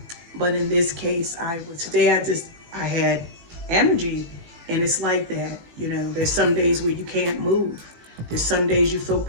but in this case, I had energy. And it's like that. You know, there's some days where you can't move. There's some days you feel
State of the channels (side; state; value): left; late; 18 ms